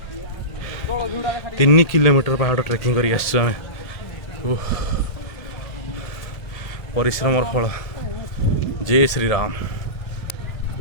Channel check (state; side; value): late; right; 1.8 ms